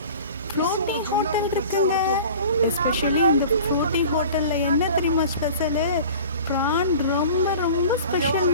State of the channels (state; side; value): inverted; both; correlation -0.41